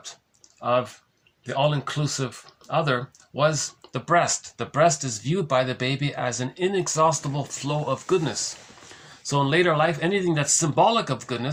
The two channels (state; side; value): identical; both; correlation 1.00